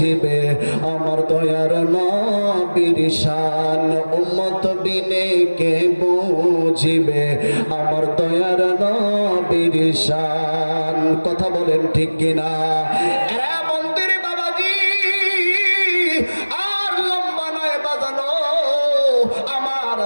আমার দয়ার নবীর শান, উম্মত বিনে কে বুঝিবে আমার দয়ার নবীর শান। কথা বলেন ঠিক কিনা? এরা মন্দির বাবাজি আর লম্বা নয় বাজানো, আমার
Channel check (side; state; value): both; inverted; correlation -1.00